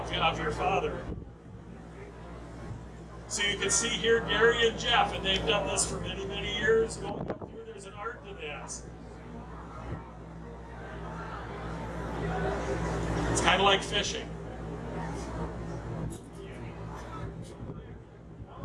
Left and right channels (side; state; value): both; identical; correlation 1.00